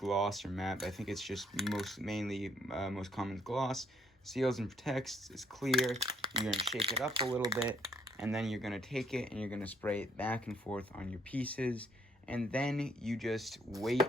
or matte, but I think it's just most common gloss, seals and protects, it's clear. You're gonna shake it up a little bit, and then you're gonna take it and you're gonna spray it back and forth on your pieces, and then you just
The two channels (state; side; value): normal; both; correlation 0.68